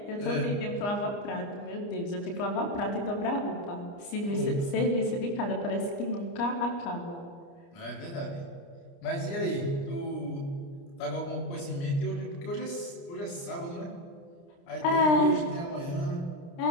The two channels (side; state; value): right; late; 29 ms